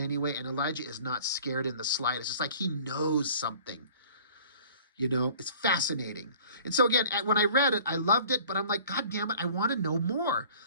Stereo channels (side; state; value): both; inverted; correlation -0.49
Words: And Elijah is not scared in the slightest. It's like he knows something. You know, it's fascinating. And so again, when I read it, I loved it, but I'm like, God damn it, I want to know more.